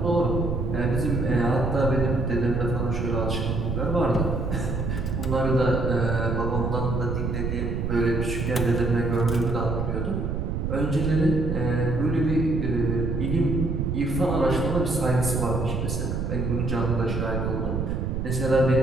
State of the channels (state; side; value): noise; right; rumble, 1 dB below the sound